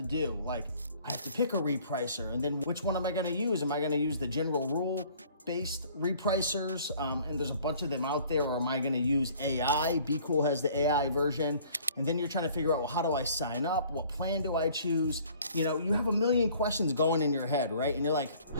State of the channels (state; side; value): inverted; both; correlation -0.54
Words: do. Like, I have to pick a repricer, and then which one am I going to use? Am I going to use the general rule-based repricers? And there's a bunch of them out there, or am I going to use AI? Be Cool has the AI version. And then you're trying to figure out, well, how do I sign up? What plan do I choose? You know, you have a million questions going in your head, right? And you're like,